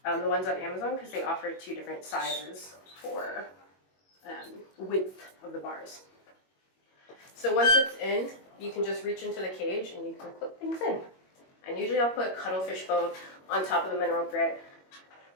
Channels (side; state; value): right; late; 21 ms